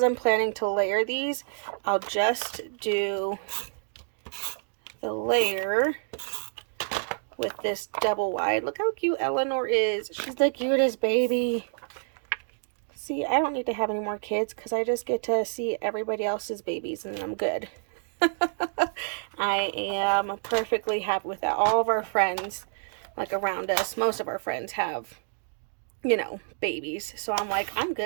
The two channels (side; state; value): left; silent; digital silence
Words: I'm planning to layer these, I'll just do the layer with this double wide. Look how cute Eleanor is. She's the cutest baby. See, I don't need to have any more kids because I just get to see everybody else's babies and I'm good. I am perfectly happy with that. All of our friends, like around us, most of our friends have, you know, babies. So I'm like, I'm